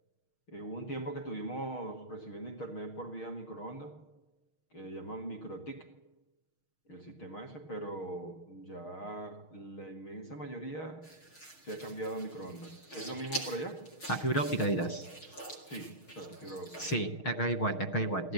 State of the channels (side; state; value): right; late; 6.4 ms